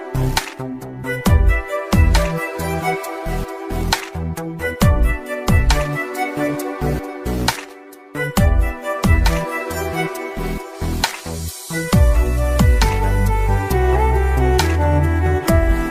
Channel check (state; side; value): identical; both; correlation 1.00